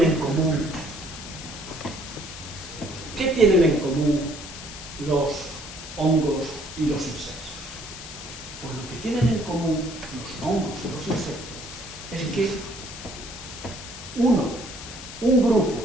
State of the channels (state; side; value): noise; left; hiss, 12 dB below the sound